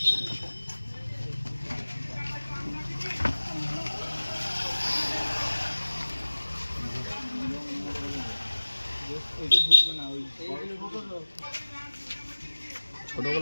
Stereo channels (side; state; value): both; inverted; correlation -1.00